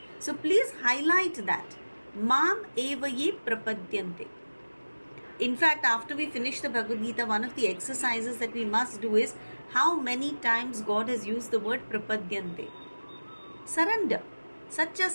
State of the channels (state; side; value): inverted; both; correlation -1.00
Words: So please highlight that. Mam evaye prapadyante. In fact, after we finish the Bhagavad Gita, one of the exercises that we must do is how many times God has used the word prapadyante. Surrender. Such a